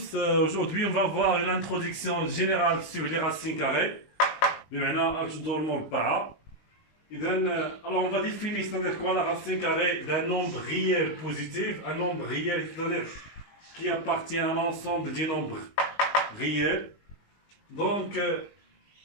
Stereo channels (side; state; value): right; late; 19 ms